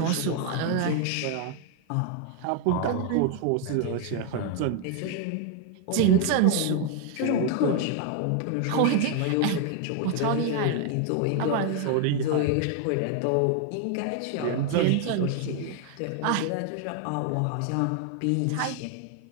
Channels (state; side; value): different; both; correlation 0.00